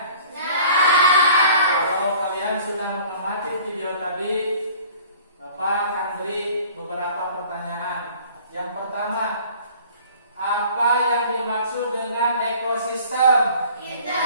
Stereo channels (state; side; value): inverted; both; correlation -0.49